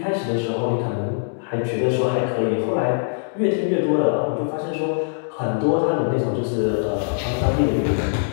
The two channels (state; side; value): silent; right; digital silence